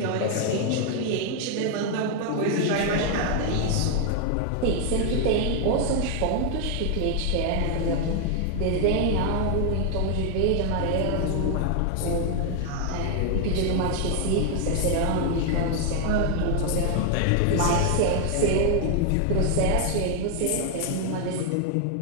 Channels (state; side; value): different; both; correlation 0.00